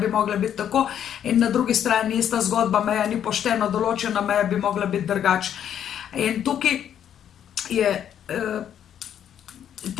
mogla biti tako, in na drugi strani ista zgodba, meja ni poštena, določena meja bi mogla biti drugače. In tukaj je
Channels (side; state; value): right; quieter; 9.6 dB